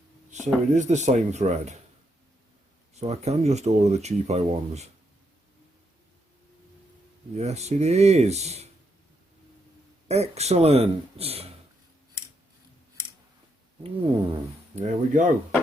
So it is the same thread. So I can just order the cheapo ones. Yes, it is. Excellent. There we go.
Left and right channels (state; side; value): normal; both; correlation 0.79